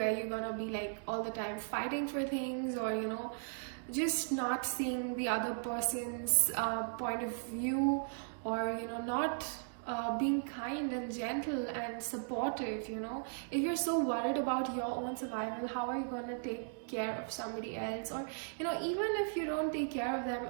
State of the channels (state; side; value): silent; left; digital silence